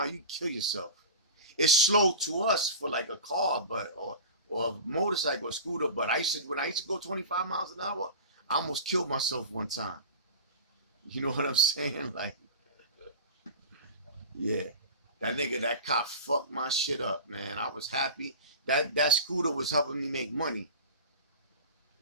you kill yourself. It's slow to us for like a car, but or a motorcycle or scooter. But when I used to go 25 miles an hour, I almost killed myself one time. You know what I'm saying? Like, yeah. That cop fucked my shit up, man. I was happy. That scooter was helping me make money.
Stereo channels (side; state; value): both; inverted; correlation -0.33